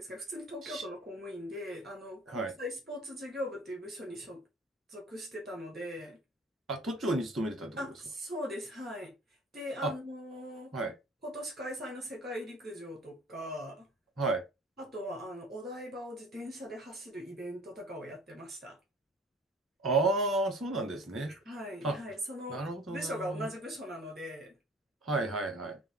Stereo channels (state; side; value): normal; both; correlation 0.48